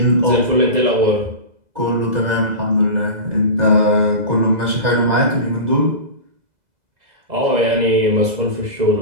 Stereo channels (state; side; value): late; left; 2.0 ms